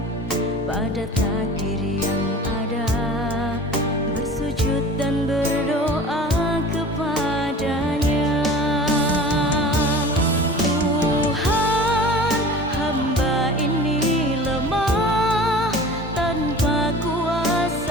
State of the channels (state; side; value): normal; both; correlation 0.40